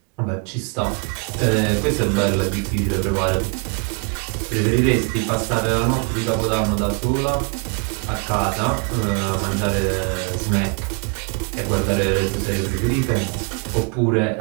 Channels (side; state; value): left; quieter; 34.6 dB